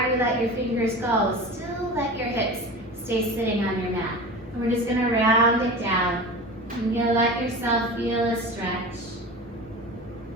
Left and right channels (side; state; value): both; normal; correlation 0.33